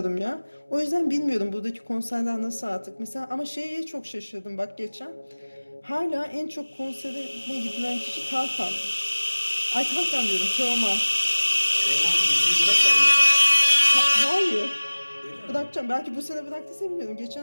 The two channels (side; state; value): both; inverted; correlation -1.00